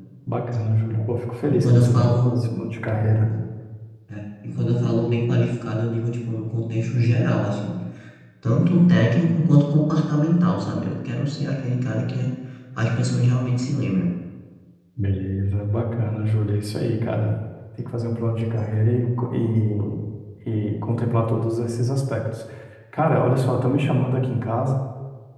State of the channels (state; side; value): identical; both; correlation 1.00